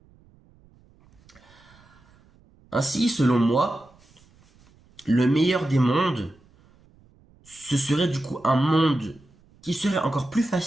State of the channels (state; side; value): noise; right; rumble, 30 dB below the sound